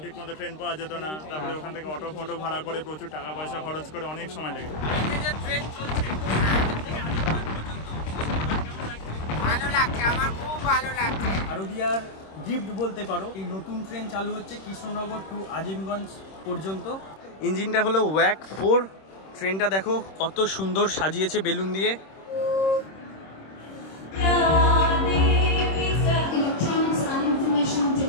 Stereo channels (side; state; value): right; late; 26 ms